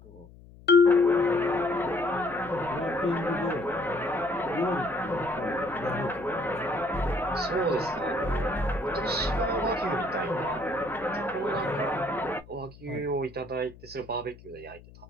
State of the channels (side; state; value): left; noise; hum, 21 dB below the sound